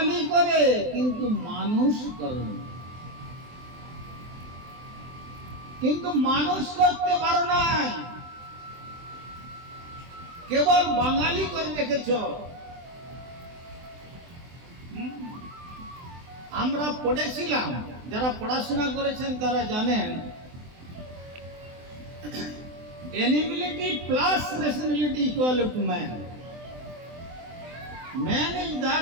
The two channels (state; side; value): late; left; 24 ms